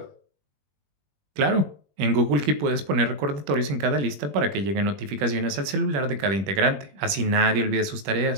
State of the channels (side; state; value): left; late; 20 ms